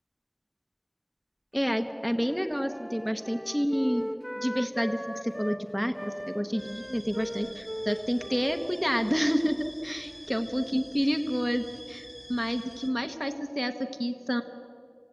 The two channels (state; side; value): identical; both; correlation 1.00